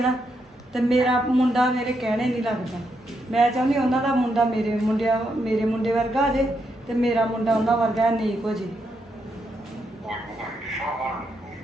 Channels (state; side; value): normal; both; correlation 0.80